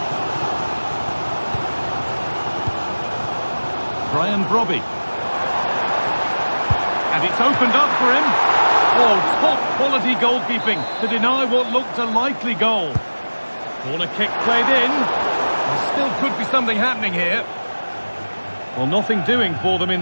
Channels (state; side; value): inverted; both; correlation -1.00